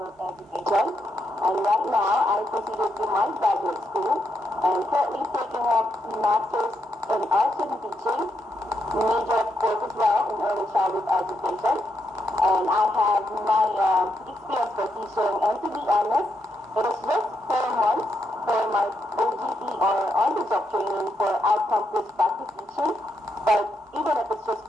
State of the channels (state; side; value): normal; both; correlation 0.80